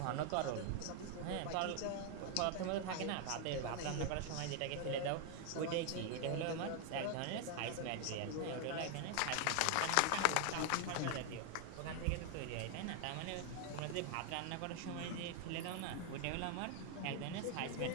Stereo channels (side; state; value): both; different; correlation 0.00